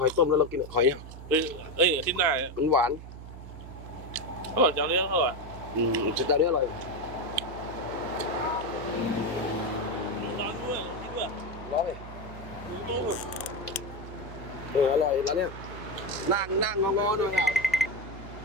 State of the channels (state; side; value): noise; right; hum, 13 dB below the sound